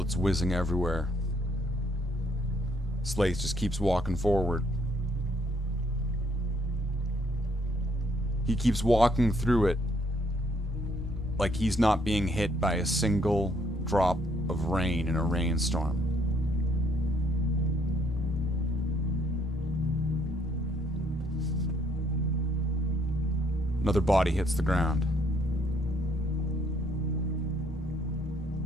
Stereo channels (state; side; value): normal; both; correlation 0.68